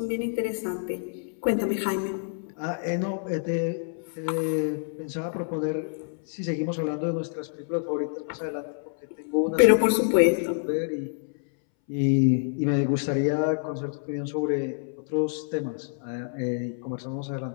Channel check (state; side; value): silent; right; 60 dB below the other